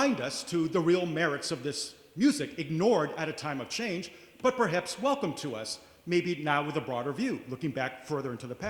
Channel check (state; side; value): identical; both; correlation 1.00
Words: us to the real merits of this music, ignored at a time of change, but perhaps welcome to us, maybe now with a broader view, looking back further into the